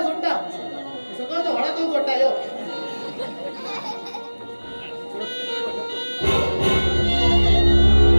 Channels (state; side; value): inverted; both; correlation -1.00